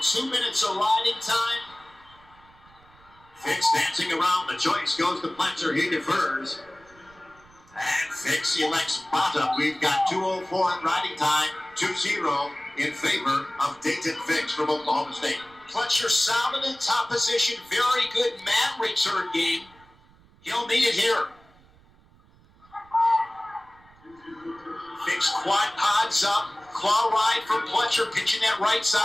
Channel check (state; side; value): noise; right; rumble, 28 dB below the sound